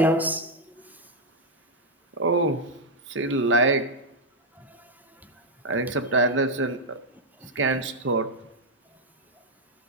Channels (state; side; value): normal; both; correlation 0.00